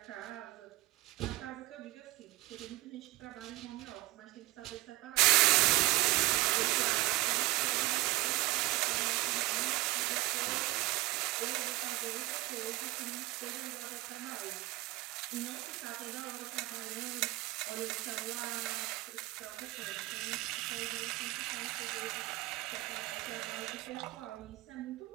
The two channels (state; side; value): quieter; left; 20.7 dB